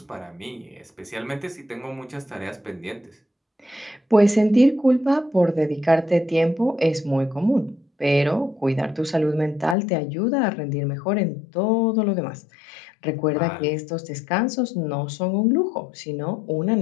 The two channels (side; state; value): right; drops out; at 9.8 s